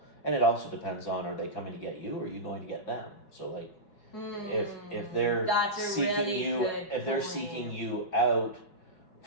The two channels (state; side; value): late; right; 5.0 ms